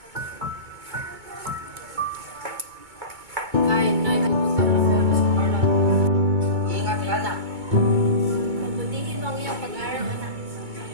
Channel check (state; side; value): late; left; 2.2 ms